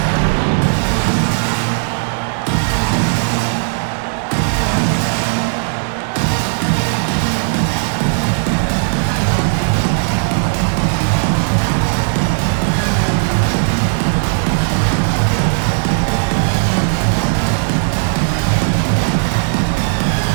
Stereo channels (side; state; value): left; silent; digital silence